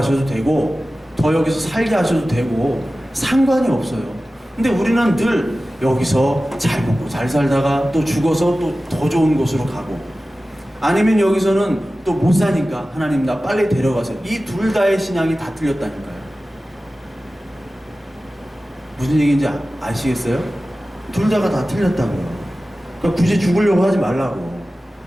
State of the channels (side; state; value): both; normal; correlation 0.95